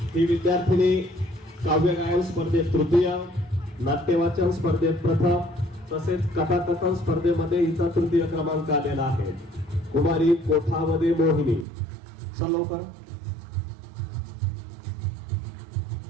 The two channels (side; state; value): left; drops out; at 11.7 s